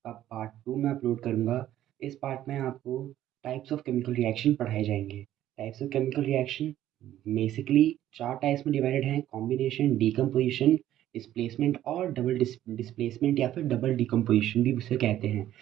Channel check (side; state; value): left; quieter; 12.7 dB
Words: का पार्ट 2 में अपलोड करूँगा। इस पार्ट में आपको टाइप्स ऑफ केमिकल रिएक्शन पढ़ाए जाएंगे। Types of chemical reaction basically चार टाइप्स में डिवाइडेड हैं: कॉम्बिनेशन, डीकम्पोजिशन, डिस्प्लेसमेंट और डबल डिस्प्लेसमेंट या फिर डबल डीकम्पोजिशन भी उसे कहते हैं।